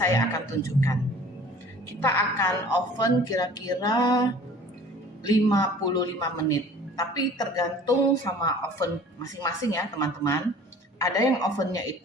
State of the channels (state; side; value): normal; both; correlation 0.48